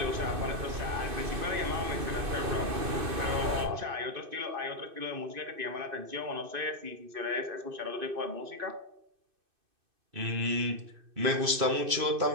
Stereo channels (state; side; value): late; left; 2.6 ms